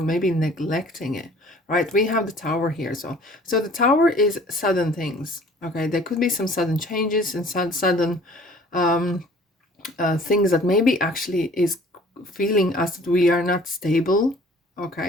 maybe neglecting it, right? We have the Tower here. So the Tower is sudden things. Okay, there could be some sudden changes and sudden things that maybe actually is feeling us that we are not stable.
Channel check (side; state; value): both; normal; correlation 0.52